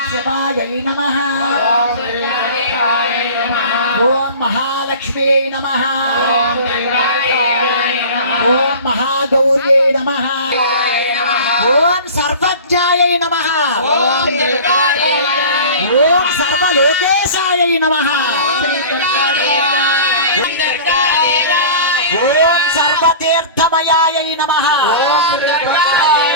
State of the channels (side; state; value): both; inverted; correlation -0.37